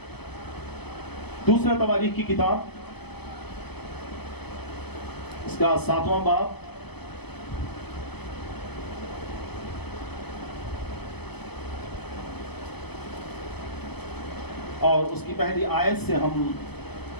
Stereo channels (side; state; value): right; late; 0.98 ms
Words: دوسرا تواریخ کی کتاب, اس کا 7واں باب, اور اس کی پہلی آیت سے ہم